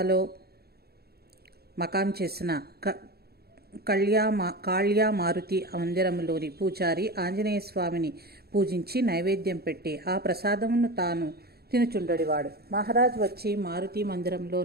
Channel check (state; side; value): late; left; 0.46 ms